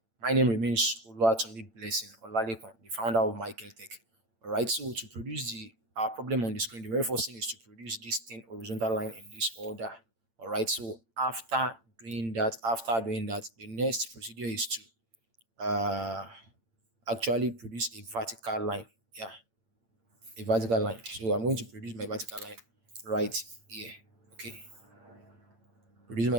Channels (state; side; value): late; left; 8.8 ms